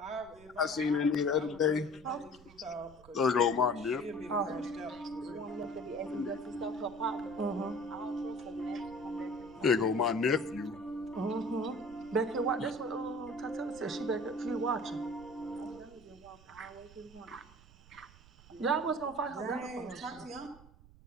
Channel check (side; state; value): right; noise; rumble, 22 dB below the sound